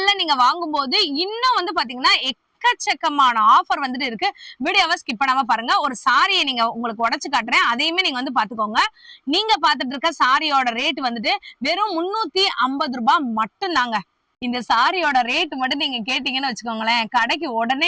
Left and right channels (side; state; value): both; identical; correlation 1.00